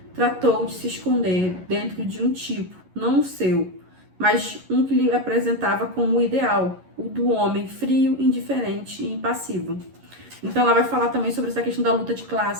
tratou de se esconder dentro de um tipo, não o seu, mas um que lhe apresentava como o ideal, o do homem frio, indiferente e impassivo. Então ela vai falar também sobre essa questão da luta de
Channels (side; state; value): left; late; 11 ms